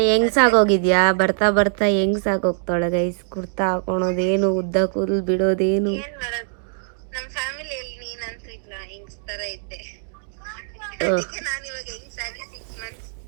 ಹೆಂಗ್ಸಾಗೋಗಿದ್ಯಾ? ಬರ್ತಾ ಹೆಂಗ್ಸಾಗೋಗ್ತಾಳೆ ಗೈಸ್. ಕುರ್ತಾ ಹಾಕೊಳೋದೇನು, ಉದ್ದ ಕೂದಲು ಬಿಡೋದೇನು. ನಮ್ಮ ಫ್ಯಾಮಿಲಿಯಲ್ಲಿ ನೀನಂತೂ ಇಲ್ಲ, ಹೆಂಗ್ಸ್ ತರ ಇದ್ದೆ. ನಾನು ಇವಾಗ ಹೆಂಗ್ಸಾಗಿ 6 months.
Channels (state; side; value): silent; left; 60 dB below the other